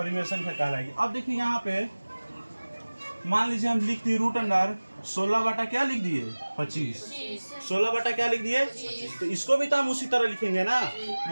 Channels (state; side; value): inverted; both; correlation -1.00